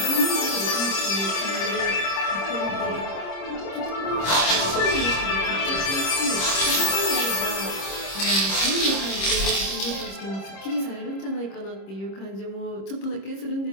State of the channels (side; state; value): right; late; 26 ms